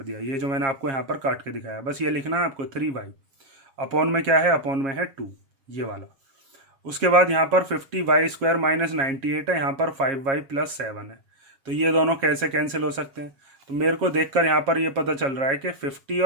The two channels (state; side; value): late; left; 7.4 ms